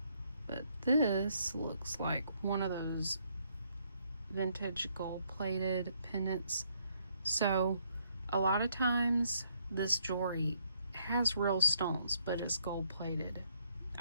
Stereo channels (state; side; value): inverted; both; correlation -0.71